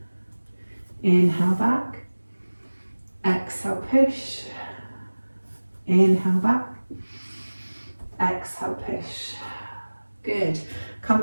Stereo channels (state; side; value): inverted; both; correlation -1.00